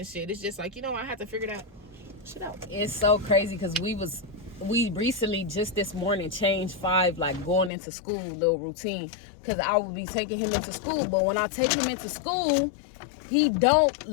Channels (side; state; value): right; drops out; at 7.7 s